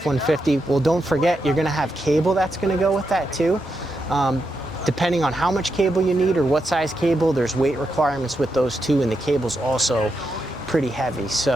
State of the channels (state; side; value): normal; both; correlation 0.84